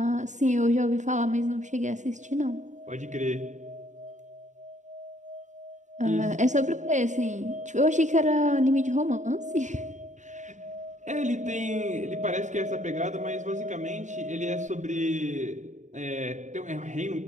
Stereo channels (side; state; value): left; late; 0.35 ms